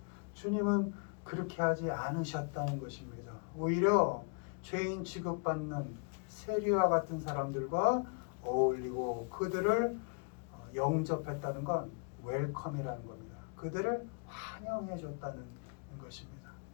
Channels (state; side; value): quieter; right; 37.5 dB